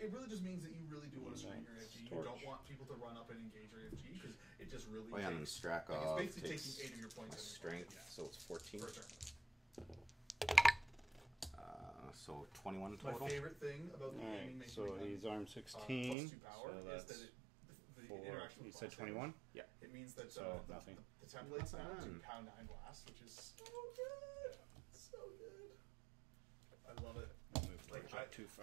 really just means that you really do want to strengthen your AFG. You Torch. don't want people to run up and engage your AFG because it just really Oh, yeah, and then takes, Strakhov like, it's basically takes taking 8 of your my points. strength, so it's 14. For a turn. So 21 My total. favorite thing about the gaming Alright, making so he's armed plus 16. 2 power So is that's that the 4. interaction You with said blast 21? Yeah. damage, it means that So, nothing. the templates now do Nothing. pound 9 blast, which is so good. So good. I love it. Move Like, Torch up too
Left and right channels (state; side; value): drops out; left; at 16.2 s